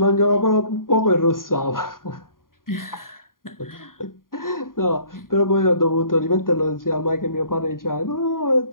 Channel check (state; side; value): late; right; 0.91 ms